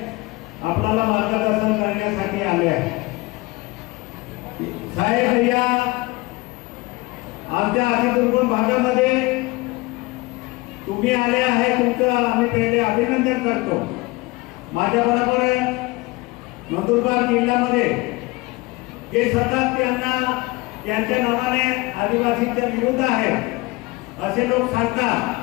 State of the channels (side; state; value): right; quieter; 22.9 dB